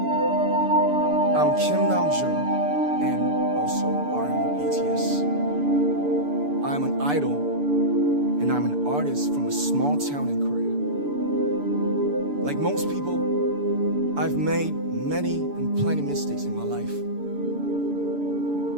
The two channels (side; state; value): left; late; 6.9 ms